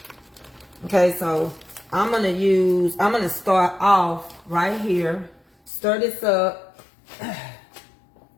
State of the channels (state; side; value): drops out; right; at 5.7 s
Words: Okay, so I'm going to start off right here. Stir this up. I'm